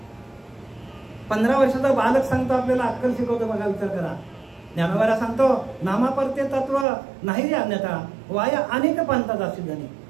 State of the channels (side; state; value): left; drops out; at 6.9 s